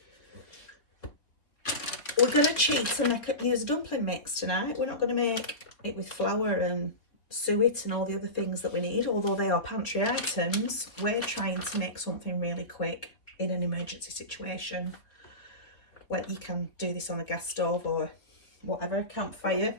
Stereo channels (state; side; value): late; right; 3.2 ms